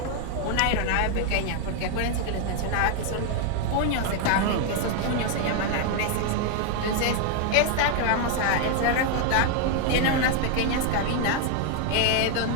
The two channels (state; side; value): different; both; correlation 0.00